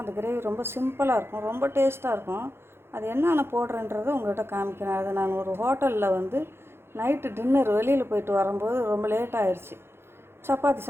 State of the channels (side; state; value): left; late; 0.12 ms